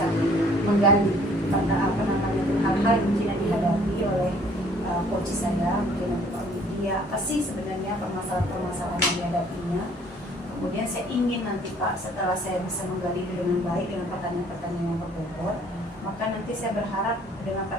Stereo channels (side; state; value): both; normal; correlation 0.58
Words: menggali pada apa namanya hal-hal yang mungkin yang dihadapi oleh coach saya, mungkin nanti Pak Widi, apa sih sebenarnya permasalahan-permasalahan yang dihadapinya. Kemudian saya ingin nanti Pak, setelah saya bisa menggali dengan baik dengan pertanyaan-pertanyaan yang berbobot, maka nanti saya berharap dengan